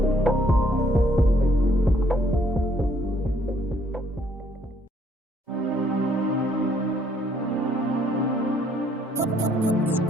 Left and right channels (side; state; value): both; normal; correlation 0.66